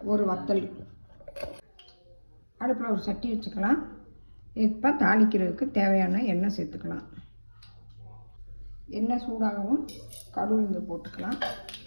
ஒரு வத்தல். அடுப்பில் ஒரு சட்டி வச்சுக்கலாம். இப்போ தாளிக்கிறதுக்கு தேவையான எண்ணெய் சேர்த்துக்கலாம். எண்ணெய் சூடாகவும் கடுகு போட்டுக்கலாம்.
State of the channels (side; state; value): both; inverted; correlation -1.00